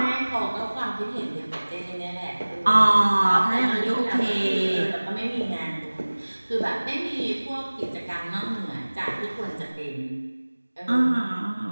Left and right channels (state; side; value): inverted; both; correlation -1.00